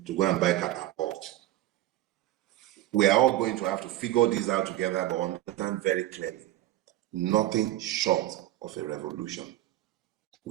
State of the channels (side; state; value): left; quieter; 15.1 dB